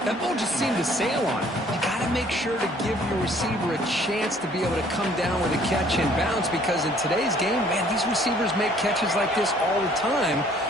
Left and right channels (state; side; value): normal; both; correlation 0.59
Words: That ball just seemed to sail on it. You got to make sure to give your receiver a chance to be able to come down with a catch and bounce, because in today's game, man, these receivers make catches like this all the time.